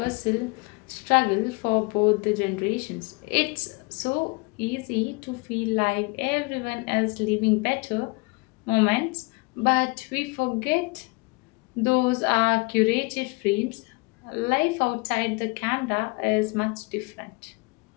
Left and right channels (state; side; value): quieter; right; 28.9 dB